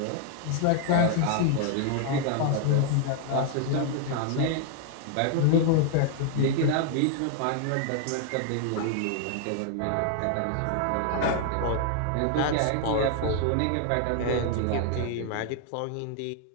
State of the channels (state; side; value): different; both; correlation 0.00